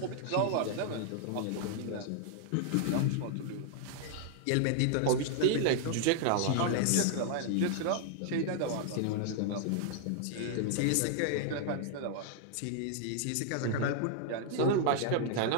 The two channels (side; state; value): both; different; correlation 0.00